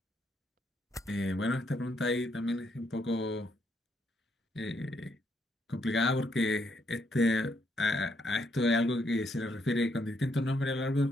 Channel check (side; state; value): both; normal; correlation 0.75